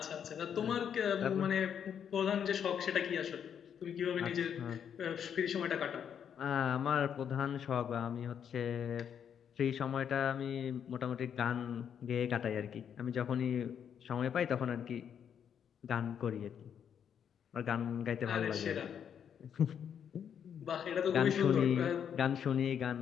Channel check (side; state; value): right; quieter; 8.3 dB